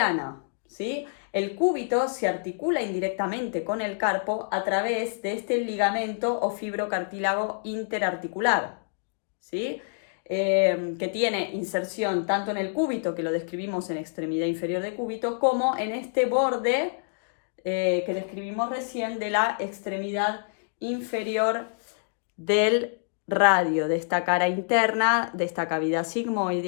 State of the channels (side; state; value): right; silent; digital silence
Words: ¿sí? El cúbito se articula indirectamente con el carpo a través de este ligamento o fibrocartílago interarticular, ¿sí? Que tiene inserción tanto en el cúbito, que lo describimos en extremidad inferior de cúbito, como en este borde que describimos recién de la extremidad inferior del radio, de esta cara interna, de esta cavidad